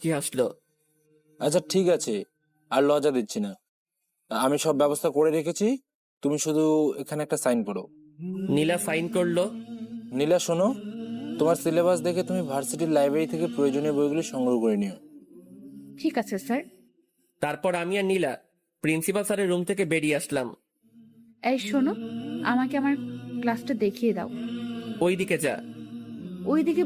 হাসলো। আচ্ছা ঠিক আছে, আর লজ্জা দিচ্ছি না, আমি সব ব্যবস্থা করে রেখেছি, তুমি শুধু এখানে একটা সাইন করো। নীলা সাইন করলো। নীলা শোনো, তোমার সিলেবাস দেখে তুমি ভার্সিটির লাইব্রেরি থেকে প্রয়োজনীয় বইগুলি সংগ্রহ করে নিও। ঠিক আছে স্যার। তারপর আমি আর নীলা প্রিন্সিপাল স্যারের রুম থেকে বেরিয়ে আসলাম। এই শোনো, আমাকে আমার ক্লাসটা দেখিয়ে দাও। ওই দিকে যা। ওই দিকে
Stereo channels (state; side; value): identical; both; correlation 1.00